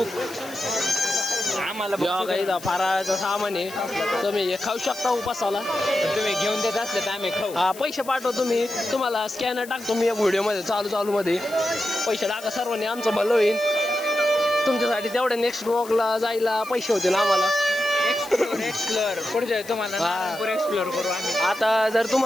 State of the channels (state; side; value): noise; left; hiss, 17 dB below the sound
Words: आम्हाला काही फराळाचं सामान आहे तुम्ही हे खाऊ शकता उपासाला तुम्ही घेऊन देत असले तर आम्ही खाऊ हा पैसे पाठवतो मी तुम्हाला स्कॅनर टाकतो मी या व्हिडिओमध्ये चालू मध्ये पैसे टाका सर्वांनी आमचं भलं होईल तुमच्यासाठी तेवढ्या नेक्स्ट ब्लॉगला जायला पैसे होतील आम्हाला एक्सप्लोर पुढच्या तुम्हाला एक्सप्लोर करू आम्ही आता जर